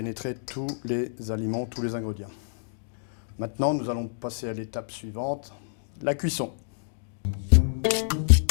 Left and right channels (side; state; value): right; silent; digital silence